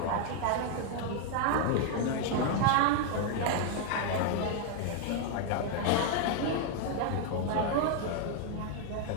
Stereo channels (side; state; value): both; different; correlation 0.00